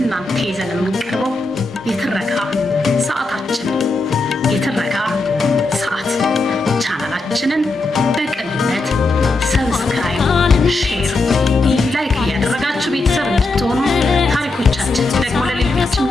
ይዘን የምንቀርበው የትረካ ሰዓታችን የትረካ ሰዓት ቻናላችንን በቅንነት ሰብስክራይብ፣ ሼር፣ ላይክ እያደረጋችሁ ቤተሰብ እንድትሆኑ ታሪኮቻችን ደግሞ ለሌሎች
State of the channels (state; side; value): quieter; right; 3.2 dB